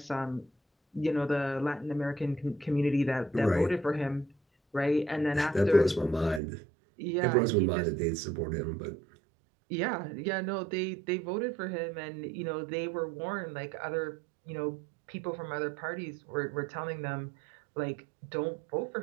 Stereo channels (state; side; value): drops out; left; at 6.4 s